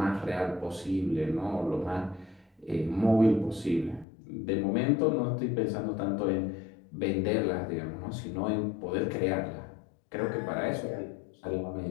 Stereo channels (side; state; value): right; drops out; at 4.0 s